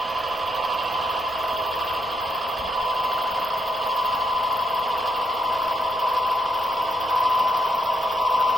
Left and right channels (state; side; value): normal; both; correlation 0.79